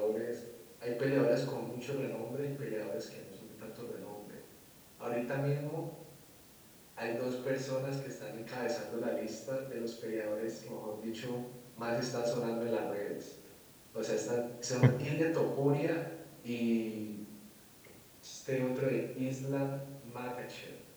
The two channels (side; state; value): both; identical; correlation 1.00